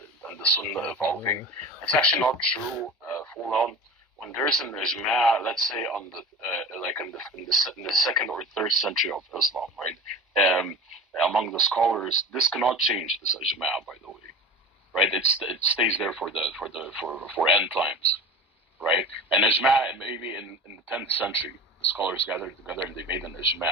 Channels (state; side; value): normal; both; correlation 0.33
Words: and the Sunnah evolving. It's actually not true, Fulan. When there's an Ijma, let's say on the like in the second or third century of Islam, right? Among the scholars, this cannot change, this Ijma, by the way, right? It stays there for end times, right? And Ijma, maybe in the 10th century, the scholars gathered together and they made an